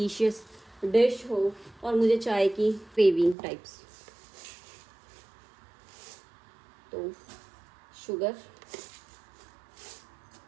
डिश हो, और मुझे चाय की क्रेविंग टाइप्स। तो शुगर,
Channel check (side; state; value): left; drops out; at 3.4 s